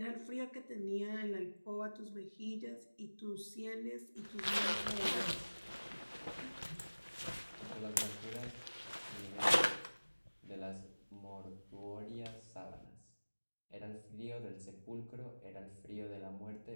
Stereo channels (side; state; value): both; inverted; correlation -1.00